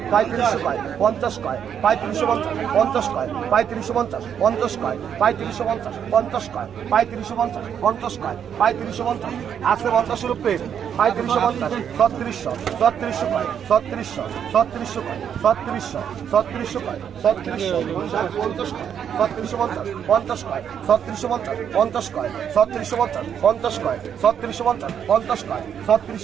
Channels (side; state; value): left; quieter; 8.4 dB